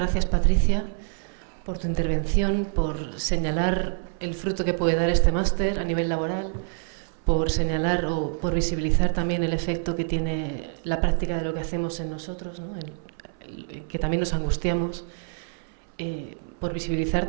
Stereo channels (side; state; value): left; silent; 60 dB below the other